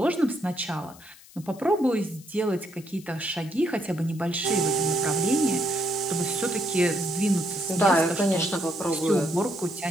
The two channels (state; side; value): noise; left; hiss, 22 dB below the sound